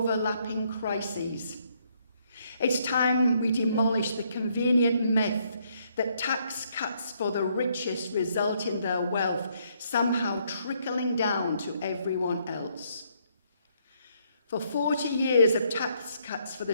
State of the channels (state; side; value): inverted; both; correlation -0.71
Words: crises. It's time we demolish the convenient myth that tax cuts for the richest result in their wealth somehow trickling down to everyone else. For 40 years of tax cuts for the